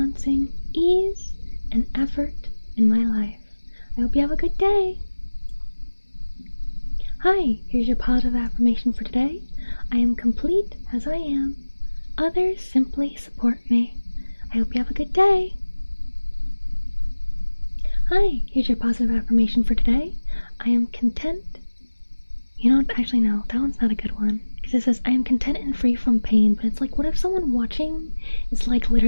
ease and effort in my life. I hope you have a good day. Hi, here's your positive affirmation for today. I am complete as I am. Others simply support me. I hope you have a good day. Hi, here's your positive affirmation for today. I am content. You know, actually no, that one's not a good one. Because it says, I am content and free from pain. But it's like, what if someone watching is like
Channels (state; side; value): inverted; both; correlation -1.00